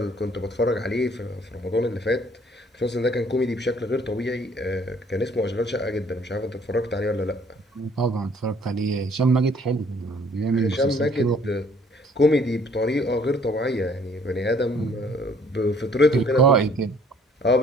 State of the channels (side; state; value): both; normal; correlation 0.59